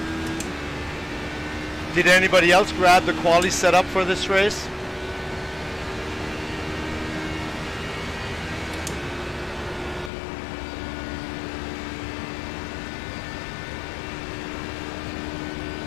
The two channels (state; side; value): drops out; right; at 10.1 s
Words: Did anybody else grab the quali setup for this race?